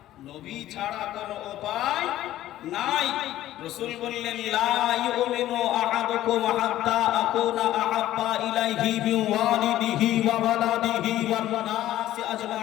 নবী ছাড়া কোনো উপায় নাই। রাসূল বললেন লা ইউমিনু আহাদুকুম হাত্তা আকুনা আহাব্বা ইলাইহি মিন ওয়ালিদিহি ওয়া ওয়ালাদিহি ওয়ান নাসি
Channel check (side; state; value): right; quieter; 13.9 dB